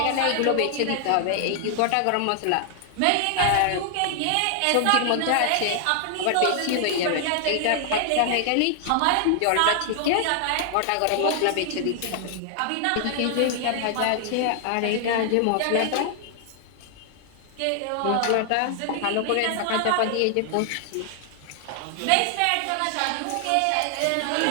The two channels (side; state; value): both; different; correlation 0.00